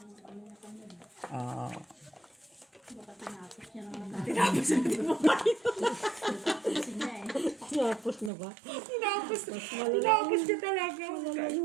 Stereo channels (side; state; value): left; drops out; at 8.3 s